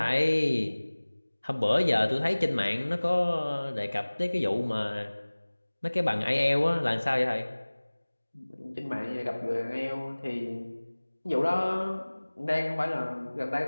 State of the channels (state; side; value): inverted; both; correlation -1.00